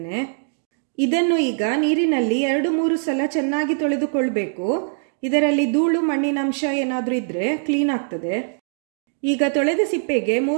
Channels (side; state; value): left; silent; digital silence